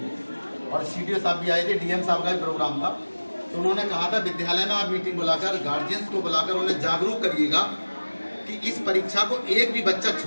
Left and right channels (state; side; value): inverted; both; correlation -1.00